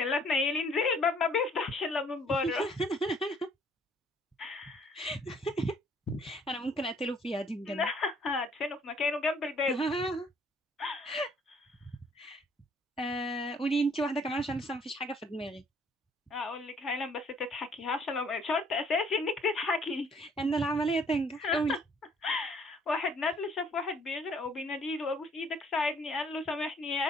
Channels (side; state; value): both; normal; correlation 0.60